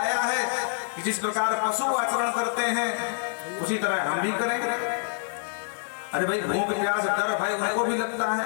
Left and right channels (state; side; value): silent; right; digital silence